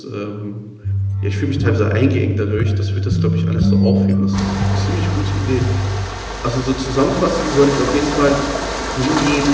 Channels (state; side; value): identical; both; correlation 1.00